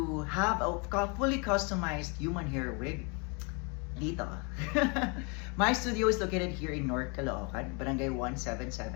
have a fully customized human hair wig, dito. My studio is located here in North Caloocan, Barangay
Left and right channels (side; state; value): right; quieter; 32.7 dB